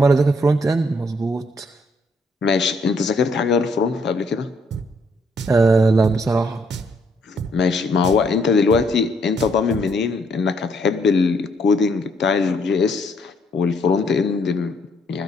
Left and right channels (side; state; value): both; normal; correlation 0.70